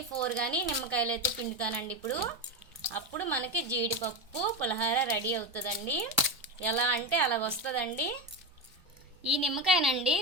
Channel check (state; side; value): normal; both; correlation 0.15